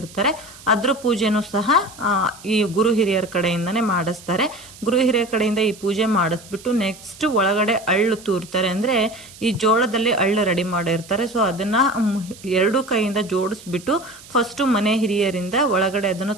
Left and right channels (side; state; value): right; noise; hiss, 20 dB below the sound